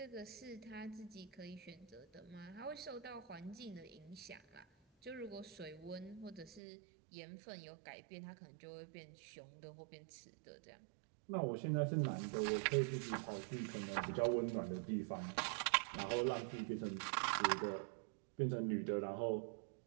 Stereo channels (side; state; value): left; drops out; at 6.6 s